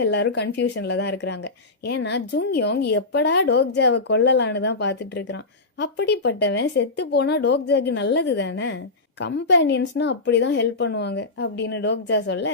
எல்லாரும் கன்ஃபியூஷன்ல தான் இருக்கிறாங்க. ஏன்னா ஜுங்யோங் எப்படா டோக்ஜாவை கொல்லலான்னு தான் பார்த்துட்டு இருக்கிறான். அப்படிப்பட்டவன் செத்து போனா டோக்ஜாக்கு நல்லது தானே, கம்பேனியன்ஸ்னா அப்படிதான் ஹெல்ப் பண்ணுவாங்க அப்படின்னு டோக்ஜா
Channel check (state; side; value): quieter; right; 3.3 dB